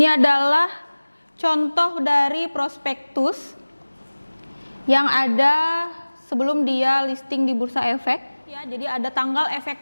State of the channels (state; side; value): inverted; both; correlation -1.00